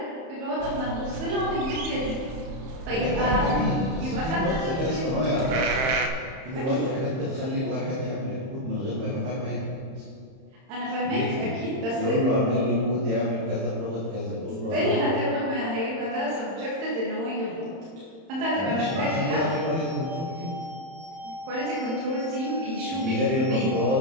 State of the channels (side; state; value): left; late; 31 ms